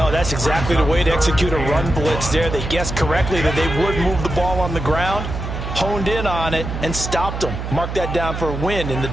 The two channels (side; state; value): right; noise; hum, 6 dB below the sound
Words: that's exactly the way to execute a run blitz there. They guessed correctly that they would move the ball on the ground, honed in on it, and stopped them. Mark that down for a win in the